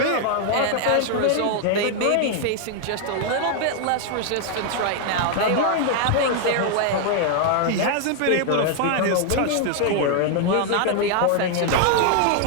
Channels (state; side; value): different; both; correlation 0.00